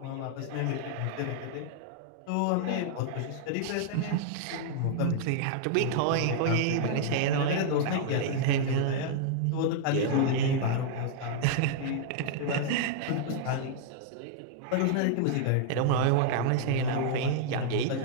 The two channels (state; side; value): different; both; correlation -0.01